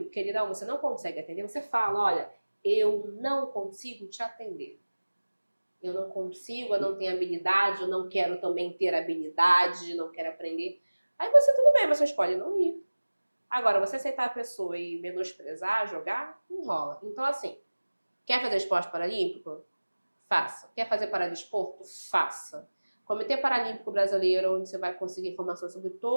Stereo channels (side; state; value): both; inverted; correlation -1.00